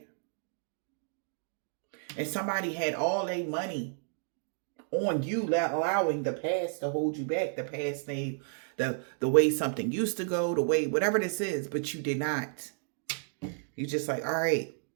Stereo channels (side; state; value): left; silent; digital silence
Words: And somebody had all their money on you, allowing the past to hold you back. The past name, the way something used to go, the way, whatever this is, but you did not. You just like, all right,